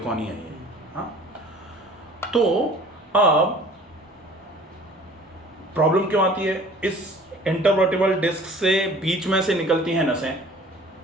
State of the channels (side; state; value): both; normal; correlation 0.49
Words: ही है ये। हाँ, तो अब प्रॉब्लम क्यों आती है? इस इंटरवर्टिब्रल डिस्क से बीच में से निकलती हैं नसें।